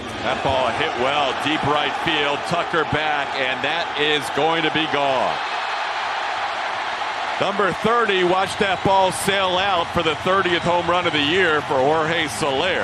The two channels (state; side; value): identical; both; correlation 1.00